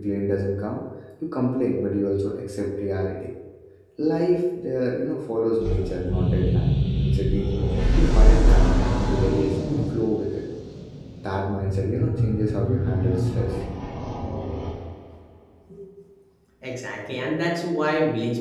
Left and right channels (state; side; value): identical; both; correlation 1.00